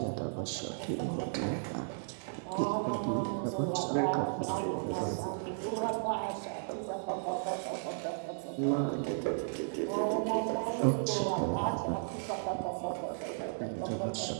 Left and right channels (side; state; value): left; silent; digital silence